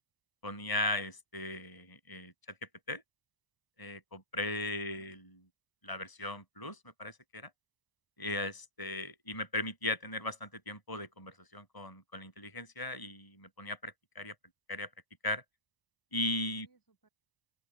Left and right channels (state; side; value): late; right; 1.0 ms